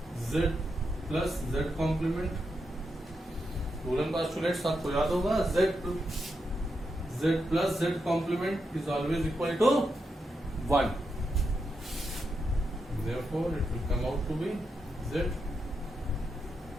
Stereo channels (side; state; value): both; normal; correlation 0.85